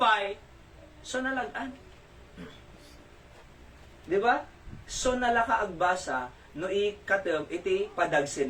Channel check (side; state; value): both; identical; correlation 1.00